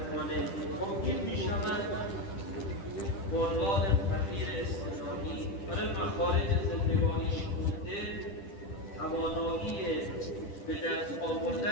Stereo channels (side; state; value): right; late; 10 ms